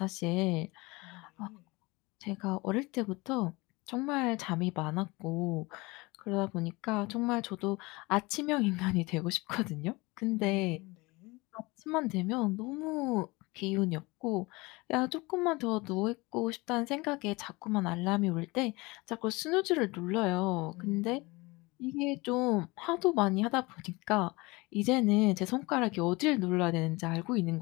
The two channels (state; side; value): quieter; right; 23.9 dB